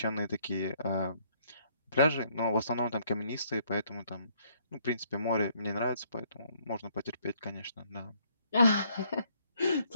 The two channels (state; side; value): inverted; both; correlation -0.67